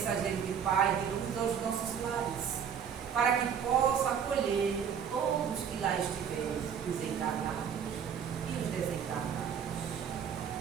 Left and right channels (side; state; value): left; quieter; 7.7 dB